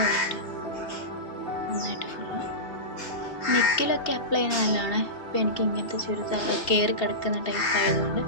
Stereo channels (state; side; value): late; right; 2.7 ms